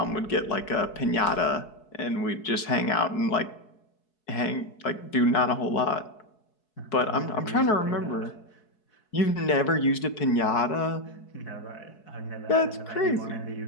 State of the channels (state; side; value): late; right; 4.7 ms